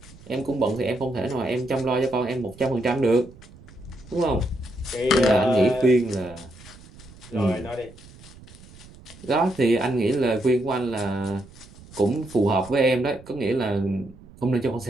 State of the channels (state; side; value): noise; right; rumble, 21 dB below the sound